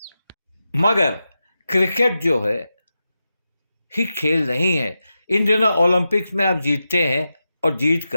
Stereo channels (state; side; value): inverted; both; correlation -0.91